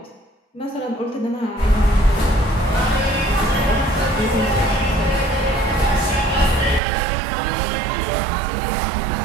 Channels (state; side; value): drops out; left; at 6.8 s